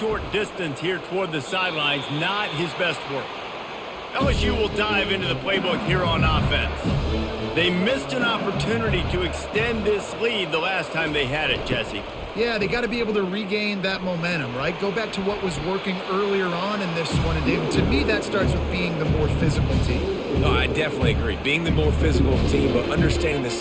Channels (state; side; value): identical; both; correlation 1.00